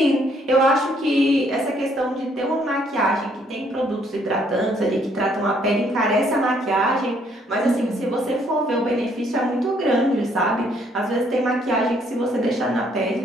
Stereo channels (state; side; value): normal; both; correlation 0.67